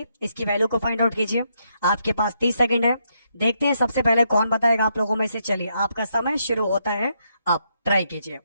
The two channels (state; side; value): inverted; both; correlation -0.78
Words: इसकी वैल्यू को फाइंड आउट कीजिए। आपके पास 30 सेकंड है, देखते हैं सबसे पहले कौन बताएगा आप लोगों में से। चलिए आपका समय शुरू होता है, आप ट्राई कीजिए।